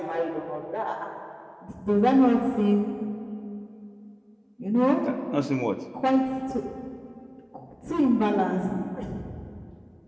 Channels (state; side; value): identical; both; correlation 1.00